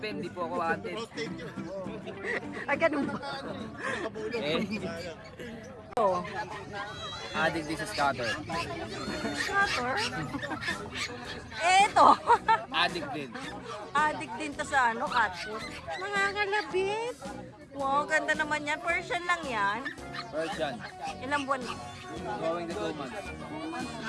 hindi po ako wanted. Ay, ganun ba? Oh, Adik this is cutter. scatter. Eto. Adik din. Addict din to sa ano, cat food. Nangangalabit. Wow, ganda naman yan. Persian lang yan. Persian. Ilang buwan na? Going to 2 months.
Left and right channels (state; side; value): identical; both; correlation 1.00